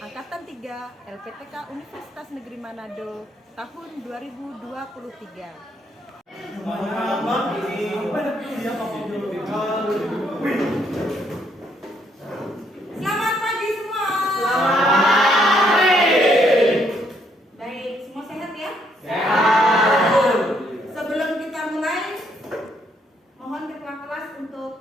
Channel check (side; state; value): both; normal; correlation 0.71